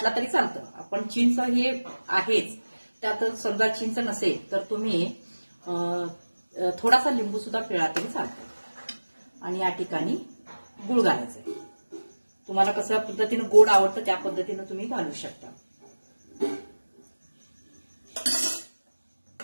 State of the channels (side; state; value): both; inverted; correlation -1.00